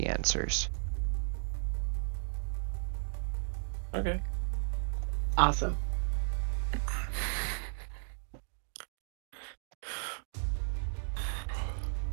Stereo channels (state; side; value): silent; left; digital silence